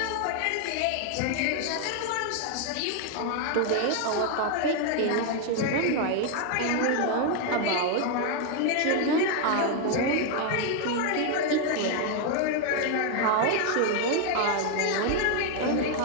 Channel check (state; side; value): different; both; correlation 0.01